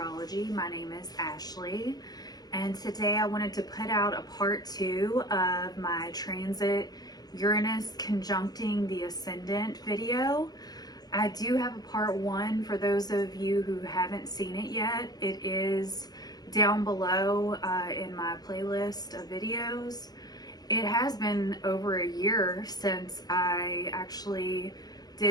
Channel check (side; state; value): right; late; 0.19 ms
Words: My name is Ashley, and today I wanted to put out a part 2 of my transit Uranus conjuncting the Ascendant video. I do have a part 1 for those of you who haven't seen it yet. It is down below in my playlist of videos. It has been over a year since I actually